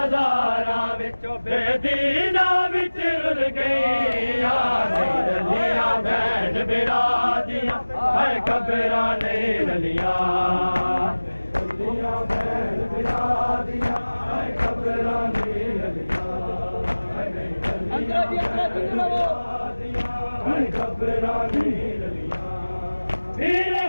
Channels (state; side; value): inverted; both; correlation -1.00